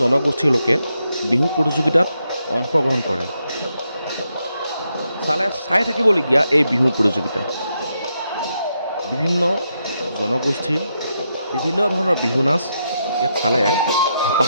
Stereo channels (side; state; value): both; inverted; correlation -0.82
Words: জনগোষ্ঠীৰ লোকে বিহু প্ৰতিযোগিতাত অংশগ্ৰহণ কৰে। চাই থাকিবলগীয়া এই বিহু প্ৰতিযোগিতা বিভিন্ন জনগোষ্ঠীৰ বিভিন্ন ধৰণৰ বিহু নাচ ইয়াত চালে হেঁপাহ